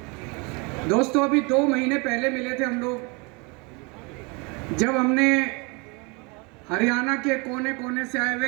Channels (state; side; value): quieter; left; 29.6 dB